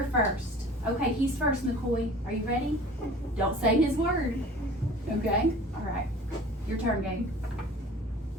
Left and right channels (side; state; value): both; normal; correlation 0.44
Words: first. Okay, he's first, McCoy. Are you ready? Don't say his word. Okay? All right. Your turn, Gabe.